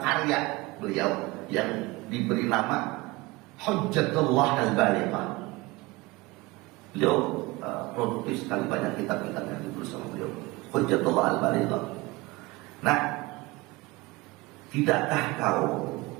karya beliau yang diberi nama Hujjatullah Al-Balighah. Beliau produktif sekali, banyak kitab-kitab yang ditulis sama beliau, Hujjatullah Al-Balighah. Nah, tidakkah kau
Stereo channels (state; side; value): quieter; left; 22.4 dB